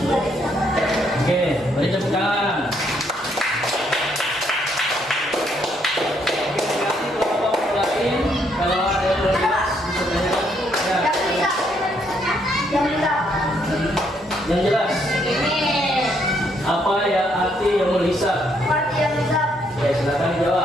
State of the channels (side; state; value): both; normal; correlation 0.72